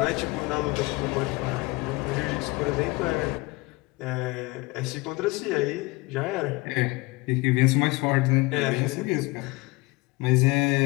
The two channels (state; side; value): quieter; right; 23.5 dB